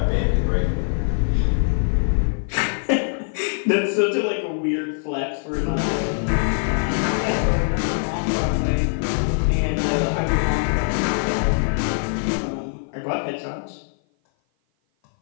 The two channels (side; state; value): right; silent; 56 dB below the other